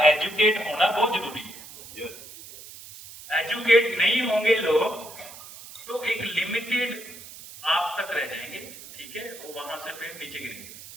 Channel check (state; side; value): noise; right; hiss, 16 dB below the sound